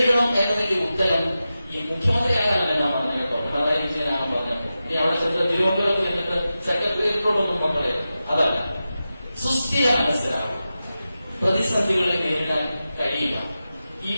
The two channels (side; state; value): both; inverted; correlation -0.93